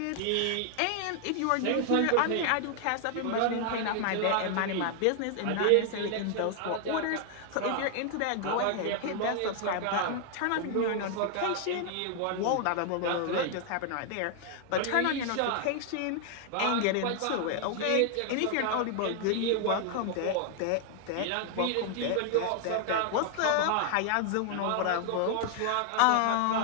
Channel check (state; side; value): different; both; correlation 0.00